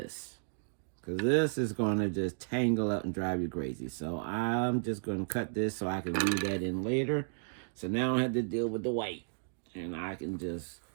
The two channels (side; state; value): left; silent; digital silence